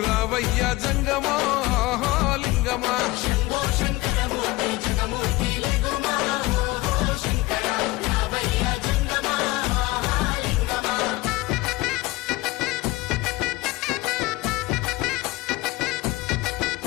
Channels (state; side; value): quieter; right; 20.2 dB